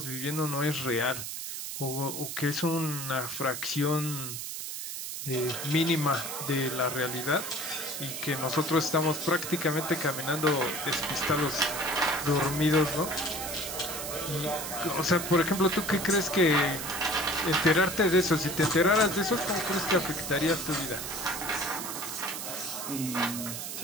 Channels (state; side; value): noise; right; hiss, 6 dB below the sound